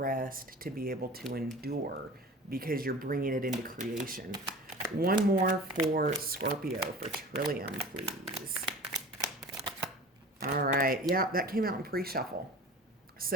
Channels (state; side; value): normal; both; correlation 0.39